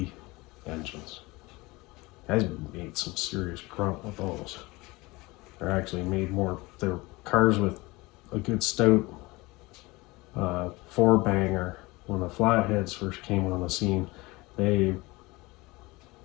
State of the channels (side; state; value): right; quieter; 22.5 dB